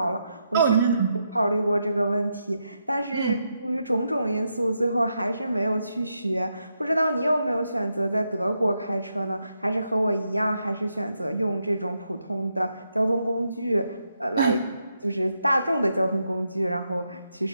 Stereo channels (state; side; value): inverted; both; correlation -0.82